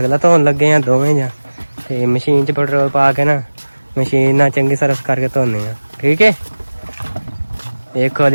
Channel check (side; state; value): both; inverted; correlation -1.00